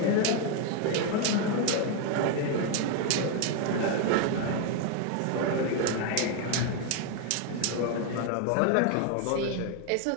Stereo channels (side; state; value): both; different; correlation 0.01